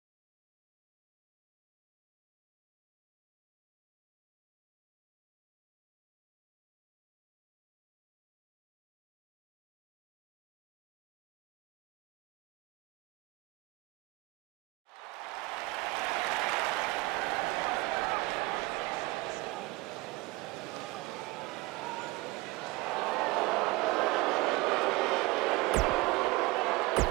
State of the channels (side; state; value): left; quieter; 22.9 dB